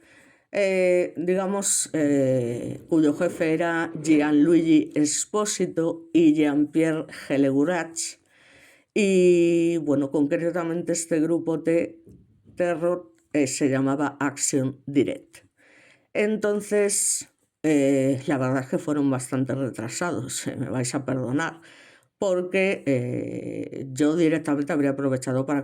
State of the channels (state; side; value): identical; both; correlation 1.00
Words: cuyo jefe era Gianluigi Esposito y Jean-Pierre Gellegurach. Y concretamente este grupo de terror se llamaba Action Direct. Entonces, la verdad es que fueron bastante retrasados, me vais a perdonar, porque yo directamente habría aprovechado para